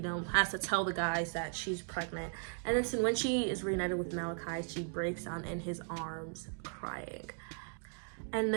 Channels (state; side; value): silent; left; 53 dB below the other